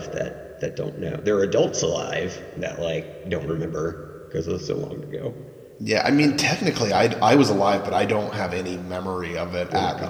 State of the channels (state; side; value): identical; both; correlation 1.00